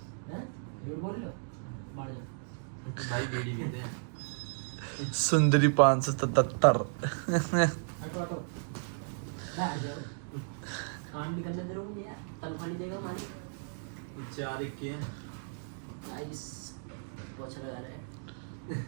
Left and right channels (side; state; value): left; silent; digital silence